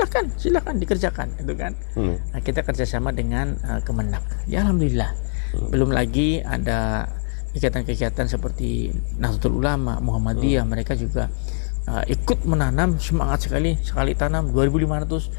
Silakan dikerjakan, gitu kan. Nah, kita kerjasama dengan Kemenak. Ya alhamdulillah. Belum lagi ada kegiatan-kegiatan seperti Nahdlatul Ulama, Muhammadiyah, mereka juga ikut menanam, semangat sekali tanam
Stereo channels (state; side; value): silent; right; digital silence